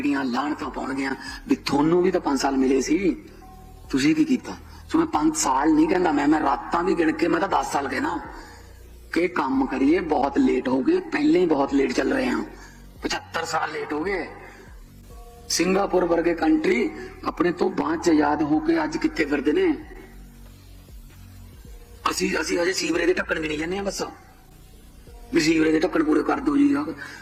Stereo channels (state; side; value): identical; both; correlation 1.00